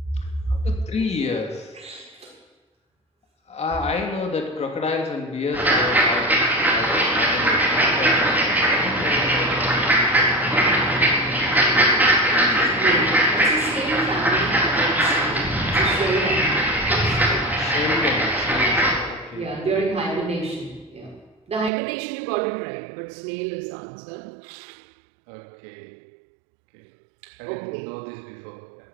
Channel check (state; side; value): drops out; left; at 21.7 s